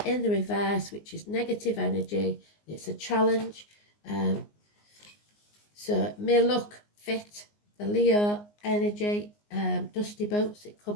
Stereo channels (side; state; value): right; late; 19 ms